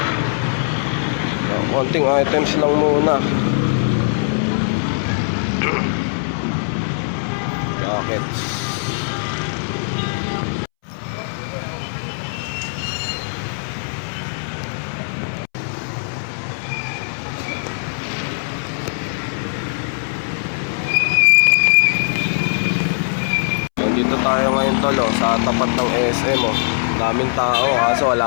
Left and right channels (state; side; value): silent; right; 66 dB below the other